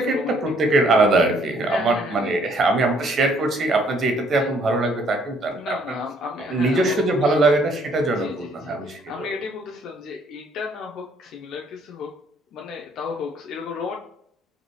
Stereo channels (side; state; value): both; normal; correlation 0.64